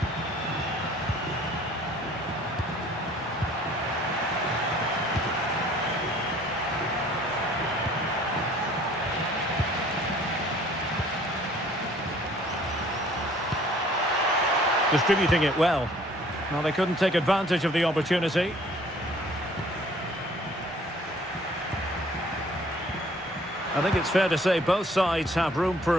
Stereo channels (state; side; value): normal; both; correlation 0.55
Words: Distributing it well. Well, they couldn't take advantage of the opportunity. I think it's fair to say both sides have room for